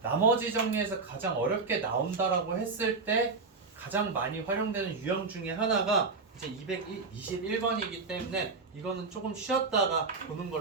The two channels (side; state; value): left; quieter; 4.3 dB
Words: 정리에서 가장 어렵게 나온다라고 했을 때 가장 많이 활용되는 유형 중에 하나가 이제 221번이기 때문에 이거는 조금 쉬었다가 보는